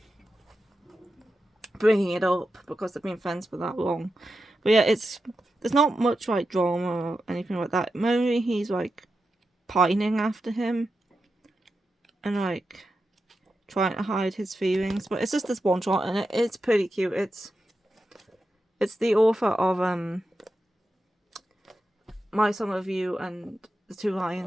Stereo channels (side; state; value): both; normal; correlation 0.89